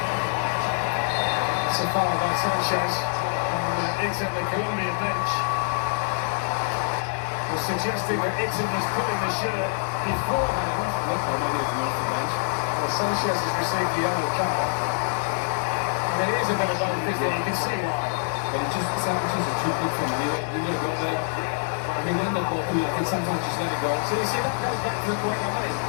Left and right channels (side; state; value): right; silent; digital silence